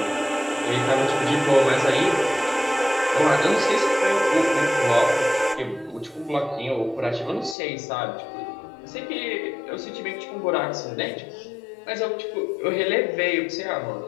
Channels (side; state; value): right; drops out; at 7.6 s